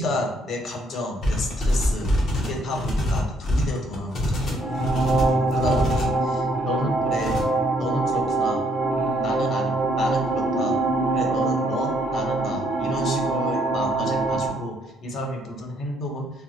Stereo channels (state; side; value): normal; both; correlation 0.68